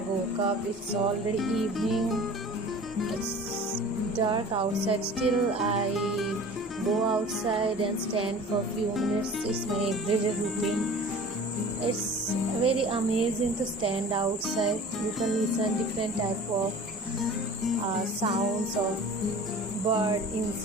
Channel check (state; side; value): normal; both; correlation 0.42